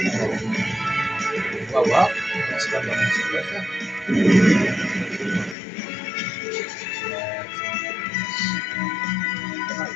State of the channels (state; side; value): drops out; right; at 5.6 s